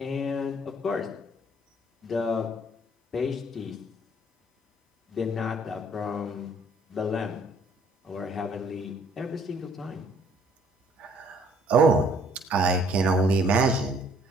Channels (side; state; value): both; normal; correlation 0.61